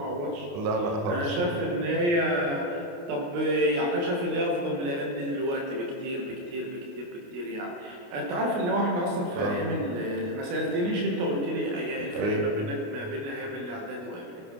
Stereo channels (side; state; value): left; late; 29 ms